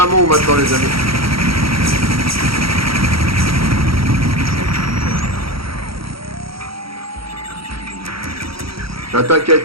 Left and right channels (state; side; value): late; left; 0.75 ms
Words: maintenant, les amis. L'attaque a